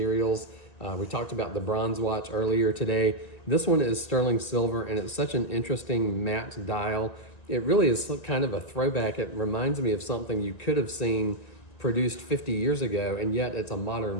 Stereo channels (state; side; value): late; right; 1.9 ms